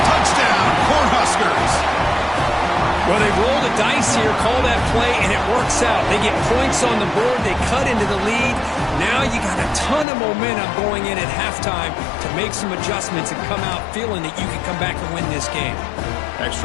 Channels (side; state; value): right; drops out; at 10.1 s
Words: Touchdown, Cornhuskers. Well, they roll the dice here, call that play, and it works out. They get points on the board. They cut into the lead. Now you got a ton of momentum going in at halftime to make some adjustments and come out feeling that you can come back and win this game.